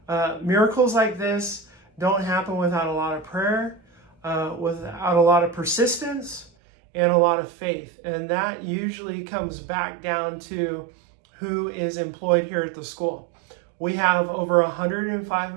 miracles like this don't happen without a lot of prayer, without a lot of persistence, and a lot of faith. And that usually comes back down to who is employed here at the school. We have over 105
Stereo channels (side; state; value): left; drops out; at 6.5 s